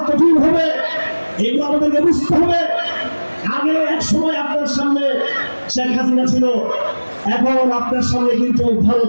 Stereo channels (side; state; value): both; inverted; correlation -1.00